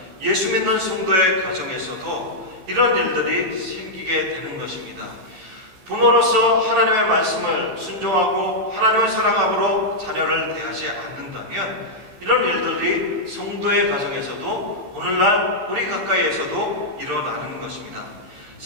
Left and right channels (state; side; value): late; left; 15 ms